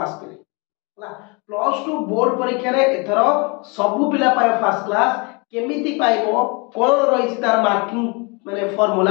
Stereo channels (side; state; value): right; quieter; 30.5 dB